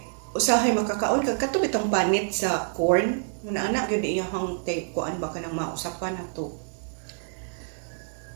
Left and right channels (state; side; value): silent; left; digital silence